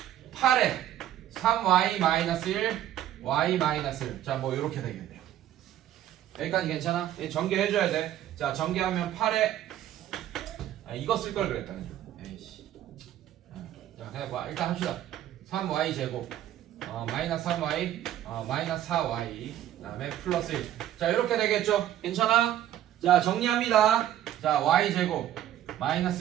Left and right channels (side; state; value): left; quieter; 12.0 dB